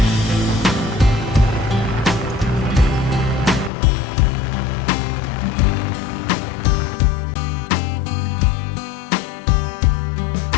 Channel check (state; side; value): drops out; right; at 3.7 s